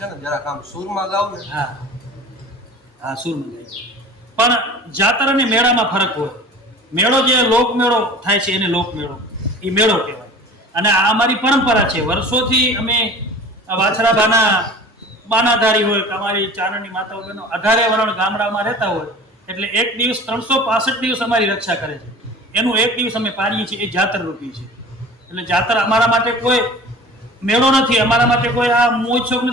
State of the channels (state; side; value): normal; both; correlation 0.41